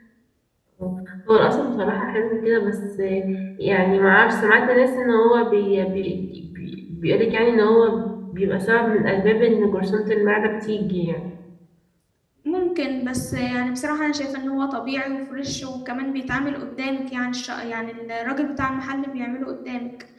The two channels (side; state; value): both; identical; correlation 1.00